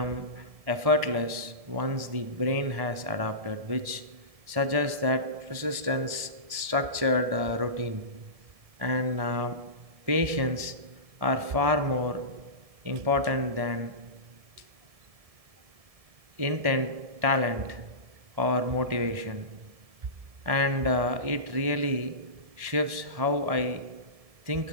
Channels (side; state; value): left; late; 1.7 ms